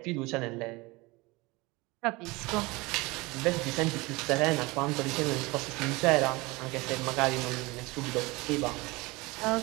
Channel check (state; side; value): quieter; left; 23.3 dB